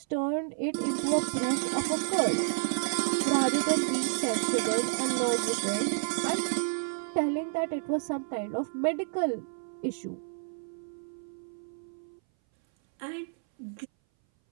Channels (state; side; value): silent; left; 58 dB below the other